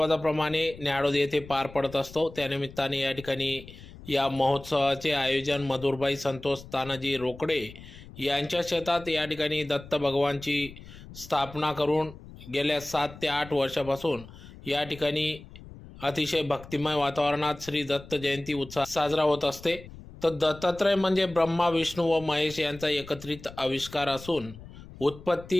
न्याहाळोद येथे पार पडत असतो। त्यानिमित्ताने या ठिकाणी या महोत्सवाचे आयोजन मधुरबाई संतोष तानाजी रोकडे यांच्या शेतात या ठिकाणी दत्त भगवानची स्थापना करून गेल्या 7 ते 8 वर्षापासून या ठिकाणी अतिशय भक्तिमय वातावरणात श्री दत्त जयंती उत्सव साजरा होत असते। तर दत्तात्रय म्हणजे ब्रह्मा विष्णू व महेश यांचा एकत्रित आविष्कार असून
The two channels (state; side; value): noise; left; rumble, 17 dB below the sound